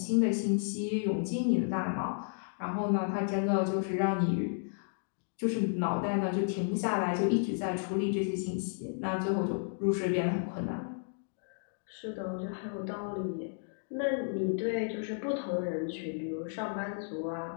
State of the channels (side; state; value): right; silent; digital silence